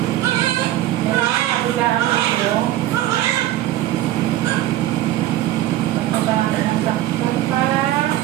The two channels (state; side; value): quieter; left; 14.3 dB